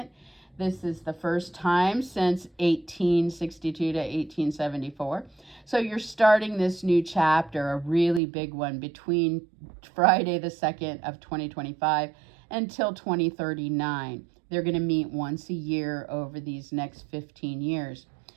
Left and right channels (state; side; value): drops out; left; at 8.2 s